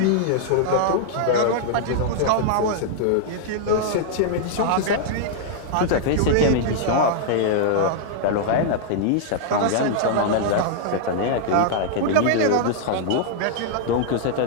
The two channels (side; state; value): both; different; correlation -0.01